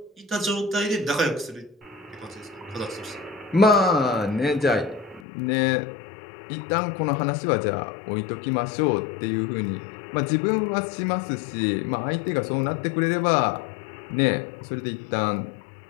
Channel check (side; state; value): right; drops out; at 5.2 s